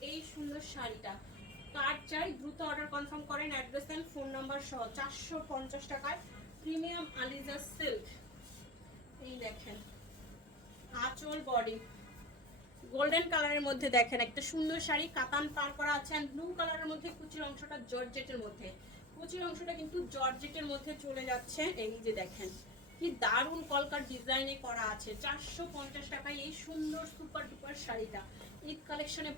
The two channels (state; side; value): normal; both; correlation 0.27